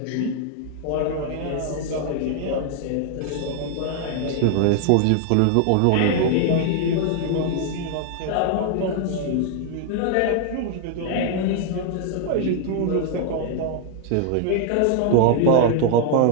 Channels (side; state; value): both; different; correlation 0.00